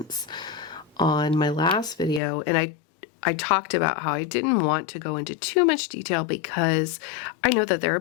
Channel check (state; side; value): drops out; right; at 2.2 s